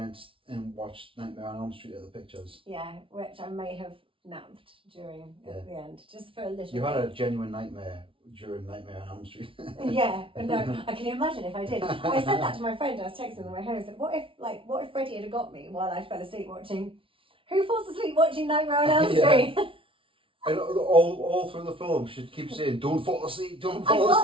and watched Nightmare on Elm Street at the pictures. Yeah, which I may have napped during at the end, just for a little. You had a genuine nightmare during Nightmare on Elm Street. Yeah, but no, I can imagine if I did. I said that to my friend. I was texting on the way home. I said, "What if Freddie had got me while I fell asleep watching? Who falls asleep watching Nightmare on Elm Street?" And all through the film, she keeps saying, "Don't fall asleep, don't fall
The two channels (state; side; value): late; left; 0.25 ms